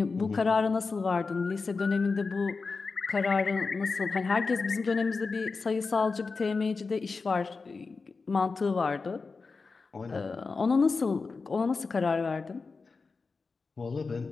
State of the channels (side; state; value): right; quieter; 4.4 dB